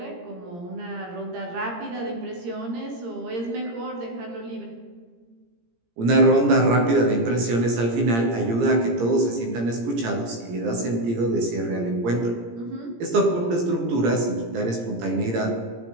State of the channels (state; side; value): late; left; 17 ms